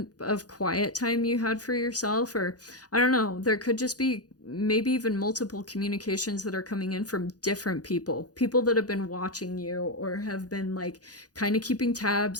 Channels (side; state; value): right; late; 0.68 ms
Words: of quiet time you had for yourself. Or I don't know, there could just be maybe even multiple communications that are coming in from different people that have been watching you or have been like kind of keeping